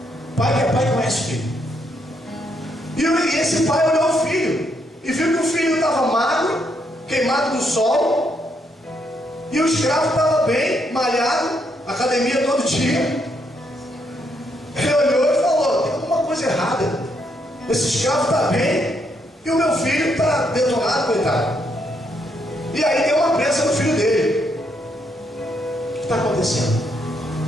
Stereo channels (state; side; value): normal; both; correlation 0.75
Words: Pai que é pai conhece o filho. E esse pai olhou o filho e viu que o filho estava magro, queimado do sol, e o escravo estava bem, malhado, academia todo dia. Ele olhou e falou: tem alguma coisa errada. Esse escravo está bem e o meu filho está detonado, coitado. E aí deu uma pressa no filho dele. O que está acontecendo?